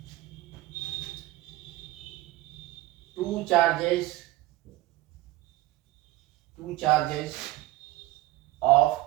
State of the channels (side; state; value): left; quieter; 17.3 dB